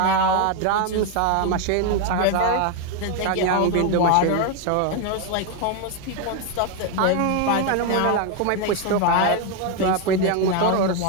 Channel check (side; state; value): both; different; correlation 0.01